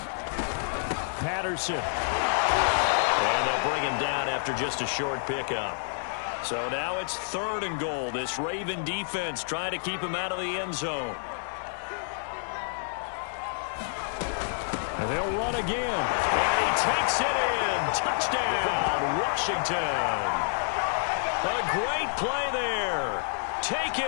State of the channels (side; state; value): right; silent; digital silence